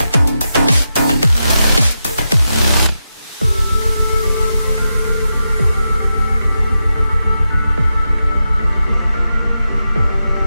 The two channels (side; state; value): both; inverted; correlation -0.88